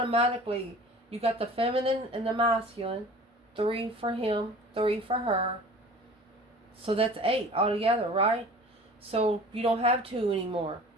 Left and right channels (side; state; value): both; normal; correlation 0.43